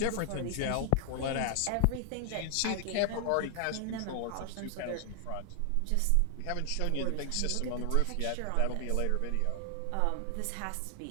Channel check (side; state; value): both; different; correlation 0.00